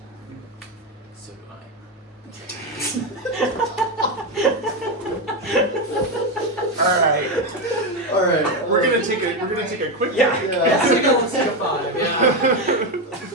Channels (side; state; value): both; normal; correlation 0.11